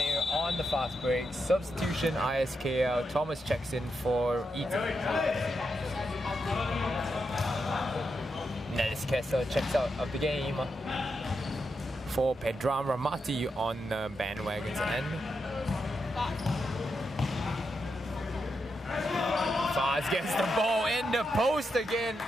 on the fast break. Substitution ISKL. Thomas checks in for Ethan. Nellis Kessa checks out of the game for Pedram Ramati on Bandwagon's end. Faz gets the ball in the post again.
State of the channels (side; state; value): both; normal; correlation 0.85